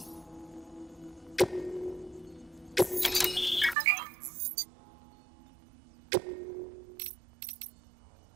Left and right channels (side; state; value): left; drops out; at 3.8 s